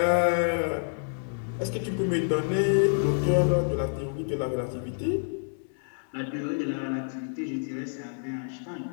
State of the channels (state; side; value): silent; right; 59 dB below the other